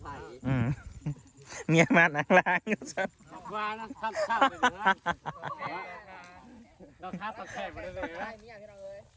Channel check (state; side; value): identical; both; correlation 1.00